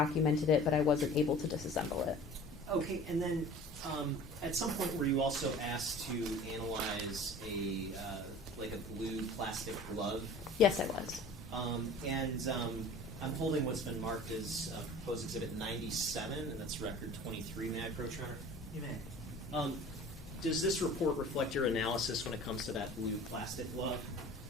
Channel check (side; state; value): both; normal; correlation 0.43